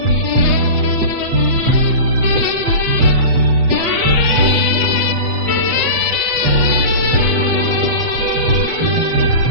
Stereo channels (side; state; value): left; late; 7.4 ms